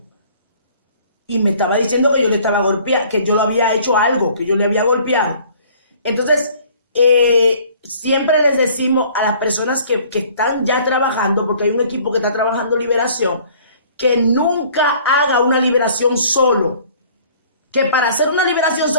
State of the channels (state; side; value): inverted; both; correlation -0.54